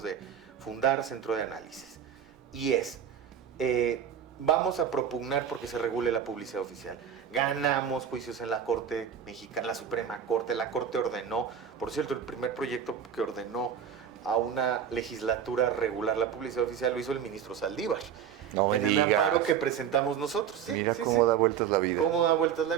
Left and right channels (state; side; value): quieter; left; 8.3 dB